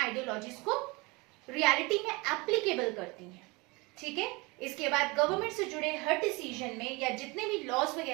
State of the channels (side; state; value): left; quieter; 25.8 dB